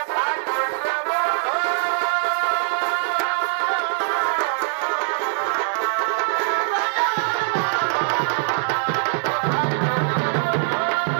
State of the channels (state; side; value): silent; left; digital silence